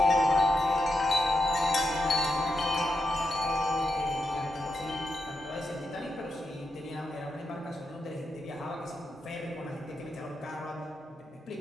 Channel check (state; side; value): normal; both; correlation 0.85